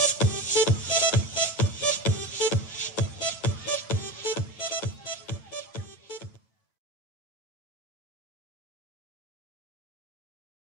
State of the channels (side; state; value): right; late; 9.0 ms